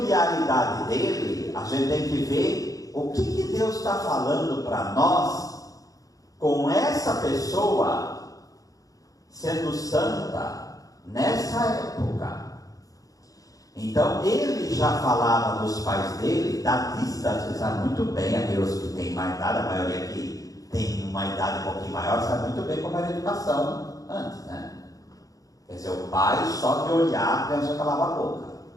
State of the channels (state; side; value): late; right; 0.17 ms